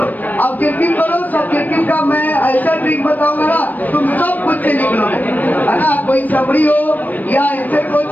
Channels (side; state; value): right; late; 0.084 ms